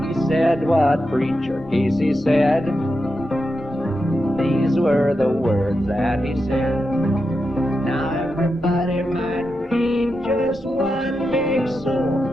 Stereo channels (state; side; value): normal; both; correlation 0.88